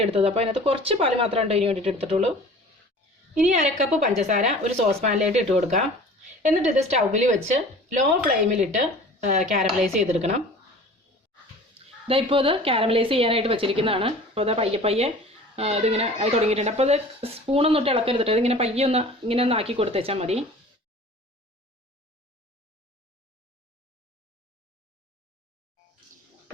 എടുത്തത്. അപ്പോൾ അതിനകത്ത് കുറച്ച് പാല് മാത്രമേ ഇതിന് വേണ്ടിയിട്ട് എടുത്തിട്ടുള്ളൂ. ഇനി 1/2 കപ്പ് പഞ്ചസാര ഒരു സോസ് പാനിലേക്ക് ഇട്ട് കൊടുക്കാം. എന്നിട്ട് ഇത് സ്റ്റൗവിൽ വെച്ച് ലോ ഫ്ലെയിമിലിട്ട് കാരമലൈസ് ചെയ്തെടുക്കണം. ഇപ്പോൾ ഇത് കാരമലൈസ് ചെയ്യാനായിട്ട് വെച്ചിരിക്കുന്നതാണ്. അപ്പോൾ അത് പയ്യെ പയ്യെ ഇതിങ്ങനെ ആയി തുടങ്ങിയിട്ടുണ്ട്. അപ്പോൾ അത് സ്പൂണൊന്നും ഇട്ട് ഇളക്കരുതിട്ട് ഇതിങ്ങനെ പയ്യെ ഇങ്ങനെ ഒന്ന് ആക്കി കൊടുത്തേച്ചാൽ മതി.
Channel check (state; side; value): normal; both; correlation 0.43